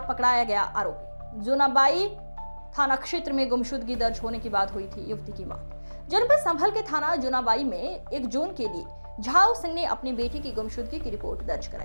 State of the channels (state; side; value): inverted; both; correlation -1.00